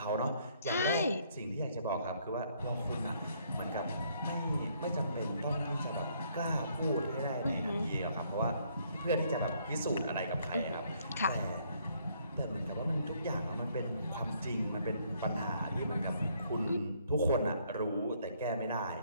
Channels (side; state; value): both; inverted; correlation -0.67